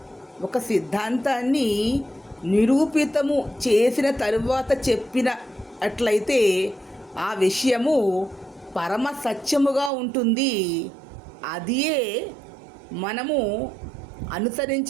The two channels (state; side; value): drops out; left; at 9.9 s